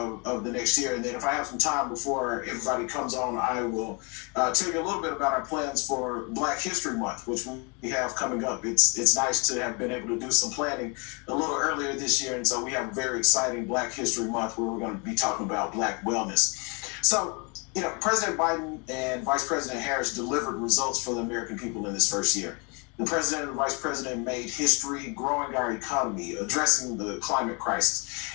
the next year. And then if I have some time before everybody comes on, I will tell you a little bit about our plans for Black History Month, which we have coming up. It's nice to have been able to do some planning a little earlier this year, and so we have a very exciting Black History Month where we're going to be talking about Black wellness. So, President Biden and Vice President Harris delivered results for the American people in this first year. The president and vice president made history growing our economy, addressing the climate crisis,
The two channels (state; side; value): quieter; right; 32.7 dB